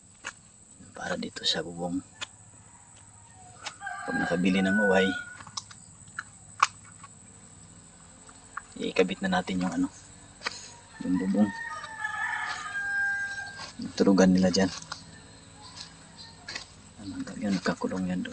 para dito sa bubong. Pag nakabili ng uway, ikabit na natin yung yung bubong. Turugan nila dyan. Yan, nagkakulong yan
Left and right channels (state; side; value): identical; both; correlation 1.00